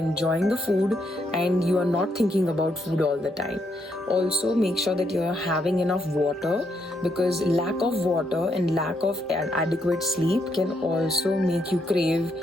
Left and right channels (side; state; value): both; normal; correlation 0.77